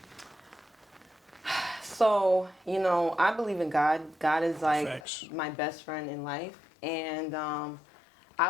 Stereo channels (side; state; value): right; drops out; at 5.1 s